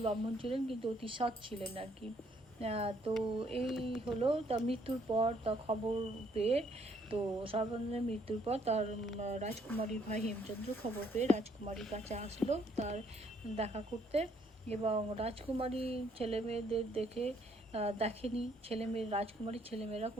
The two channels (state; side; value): normal; both; correlation 0.67